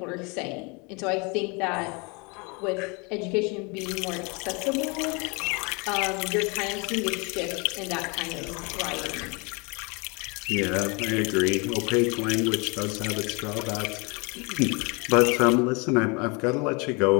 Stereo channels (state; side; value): quieter; right; 30.0 dB